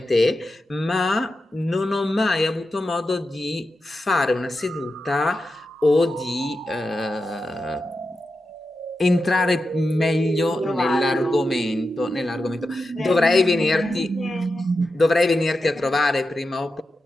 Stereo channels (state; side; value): normal; both; correlation 0.89